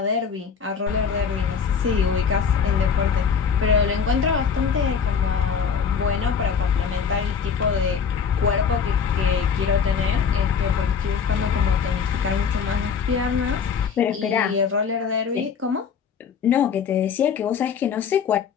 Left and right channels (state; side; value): quieter; right; 6.5 dB